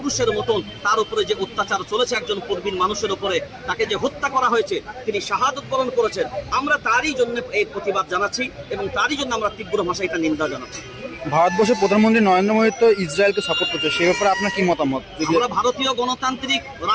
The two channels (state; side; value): identical; both; correlation 1.00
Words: মতন তার উপরে যে অত্যাচার চলেছে একজন প্রবীণ মানুষের উপরে, তাকে যে হত্যা করা হয়েছে, তিনি শাহাদত বরণ করেছেন, আমরা তারই জন্য এই প্রতিবাদ জানাচ্ছি এবং তারই জন্য আমরা তীব্র ভাষায় এটা নিন্দা জানাচ্ছি। ভারতবর্ষের প্রধানমন্ত্রী নরেন্দ্র মোদী তো ইসরায়েলকে সাপোর্ট করছে, সেই ব্যাপারে আপনার কি মতামত? আমরা ভারতীয় গণতান্ত্রিক